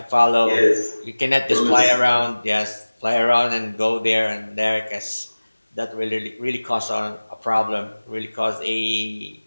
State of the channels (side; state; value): both; inverted; correlation -1.00